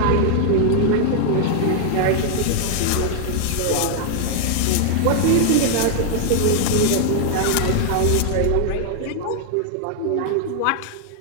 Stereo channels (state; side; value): different; both; correlation 0.00